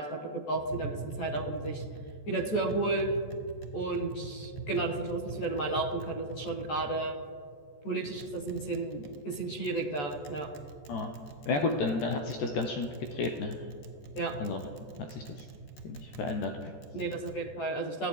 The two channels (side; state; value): right; late; 14 ms